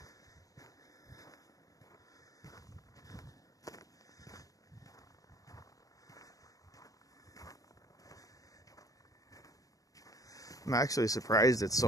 I'm actually surprised it's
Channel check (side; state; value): right; late; 0.17 ms